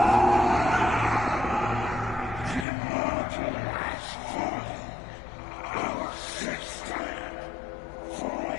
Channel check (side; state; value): right; drops out; at 2.7 s